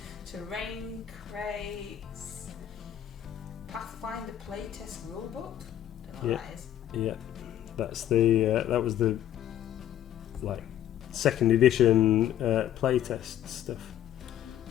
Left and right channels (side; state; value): right; quieter; 11.2 dB